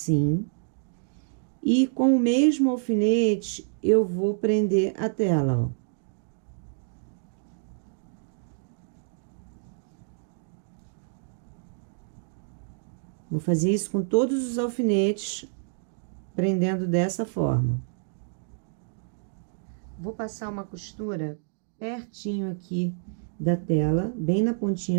E com o mesmo alfinete, eu vou prender a tela, ó. Vou fazer isso com todos os alfinetes, prendendo dessa forma. Vou passar uma costura pertinho aqui da tela, bem na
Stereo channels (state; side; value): silent; left; digital silence